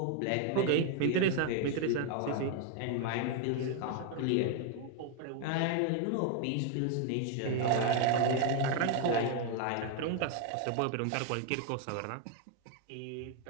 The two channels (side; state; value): both; different; correlation 0.01